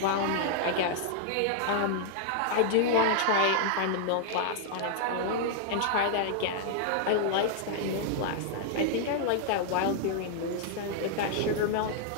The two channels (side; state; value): both; different; correlation -0.01